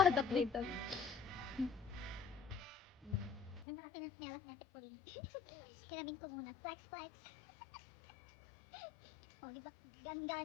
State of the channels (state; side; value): drops out; right; at 3.7 s